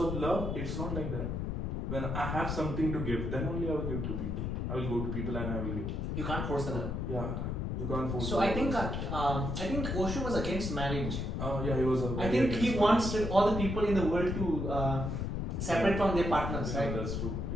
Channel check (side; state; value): left; noise; rumble, 2 dB below the sound